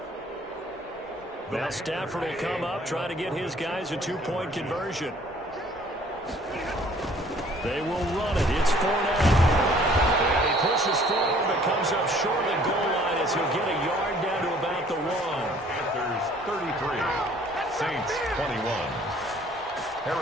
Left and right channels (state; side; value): normal; both; correlation 0.56